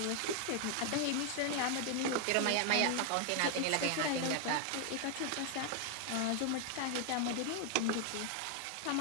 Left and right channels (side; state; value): both; different; correlation 0.00